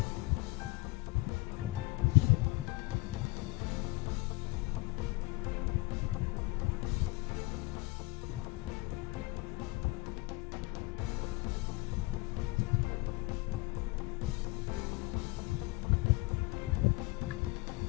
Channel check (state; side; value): quieter; right; 23.2 dB